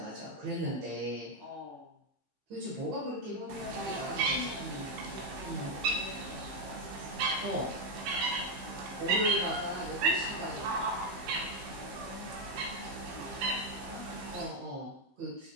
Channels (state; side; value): late; left; 15 ms